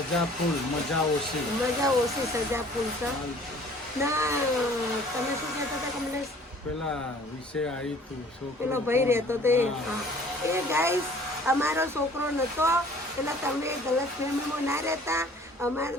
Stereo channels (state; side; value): normal; both; correlation 0.52